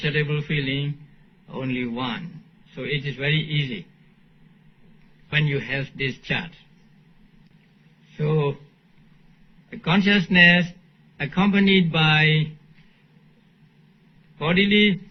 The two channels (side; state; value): both; identical; correlation 1.00